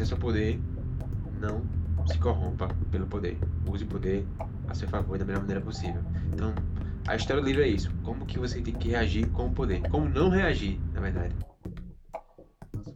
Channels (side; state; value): both; identical; correlation 1.00